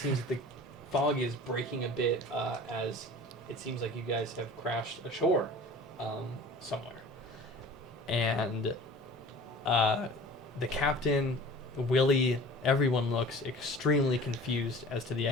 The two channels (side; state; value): both; normal; correlation 0.42